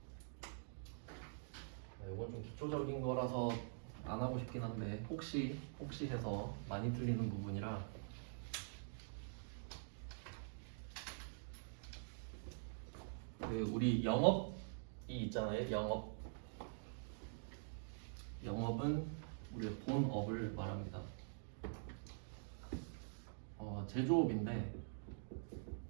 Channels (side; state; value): left; silent; digital silence